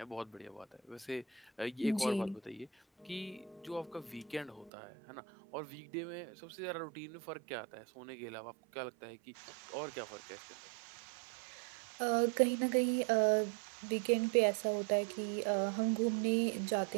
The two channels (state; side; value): drops out; left; at 4.7 s